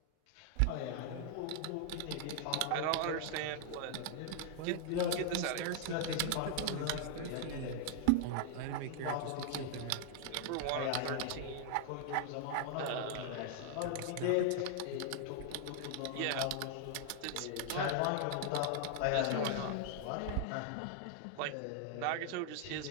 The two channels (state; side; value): different; both; correlation 0.00